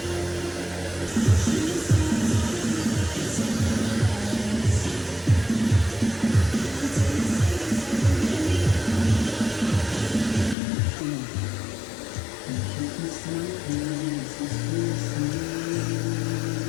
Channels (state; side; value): drops out; right; at 10.6 s